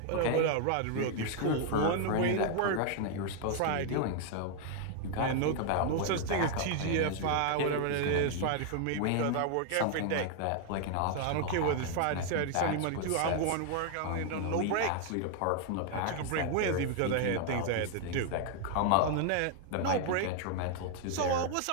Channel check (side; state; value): both; different; correlation 0.00